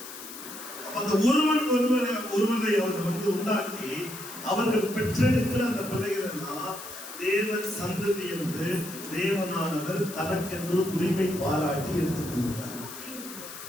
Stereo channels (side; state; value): left; noise; hiss, 12 dB below the sound